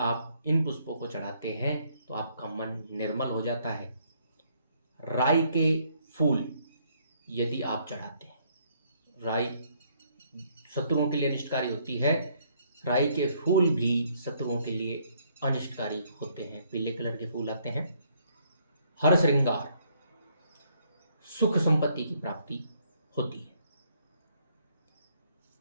इन पुष्पों को चढ़ाते हैं तो आपका मन निर्मल हो जाता है। राई के फूल यदि आप चढ़ाते हैं, राई शत्रुओं के लिए अनिष्टकारी होती है, राई के फूल भी शत्रुओं के लिए अनिष्टकारी होते हैं। पीले कलर के फूल आते हैं। हर श्रृंगार, सुख संपत्ति की प्राप्ति होती है।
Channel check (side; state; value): both; inverted; correlation -0.68